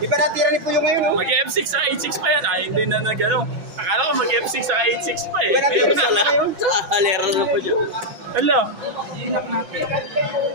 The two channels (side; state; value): left; late; 6.1 ms